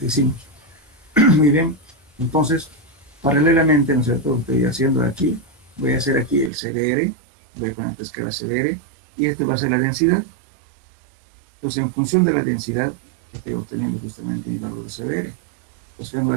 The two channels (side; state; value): left; drops out; at 6.5 s